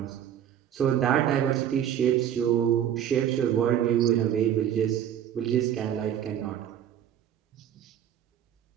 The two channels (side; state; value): left; quieter; 10.1 dB